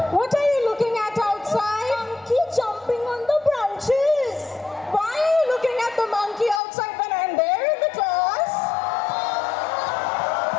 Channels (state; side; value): drops out; right; at 6.6 s